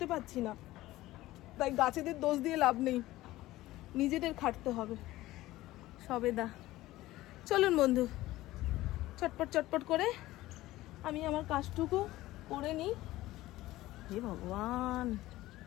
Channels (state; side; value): quieter; right; 16.9 dB